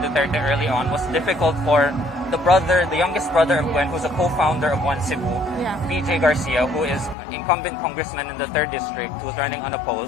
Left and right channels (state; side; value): drops out; right; at 7.2 s